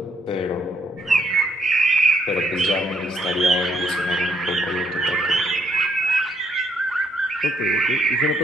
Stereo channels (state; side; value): normal; both; correlation 0.72